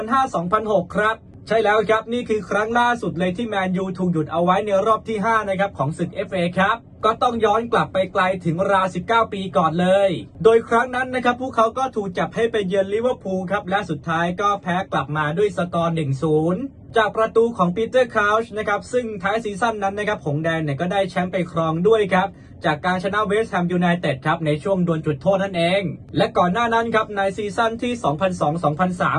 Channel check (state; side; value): identical; both; correlation 1.00